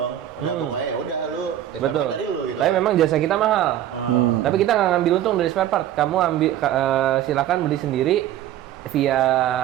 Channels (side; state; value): left; quieter; 11.9 dB